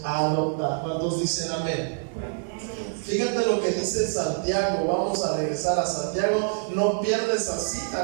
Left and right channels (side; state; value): left; silent; digital silence